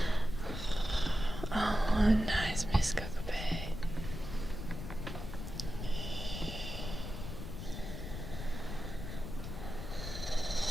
Oh, nice, Miss Cockapay.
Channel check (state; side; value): noise; left; rumble, 7 dB below the sound